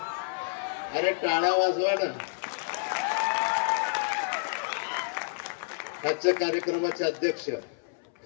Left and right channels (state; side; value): silent; right; 58 dB below the other